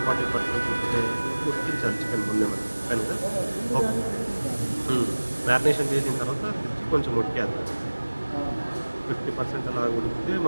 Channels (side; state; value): both; inverted; correlation -1.00